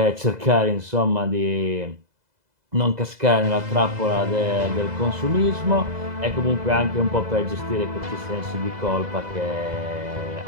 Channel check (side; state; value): left; late; 2.0 ms